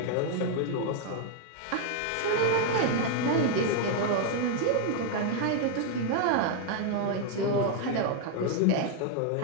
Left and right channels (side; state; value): both; different; correlation 0.00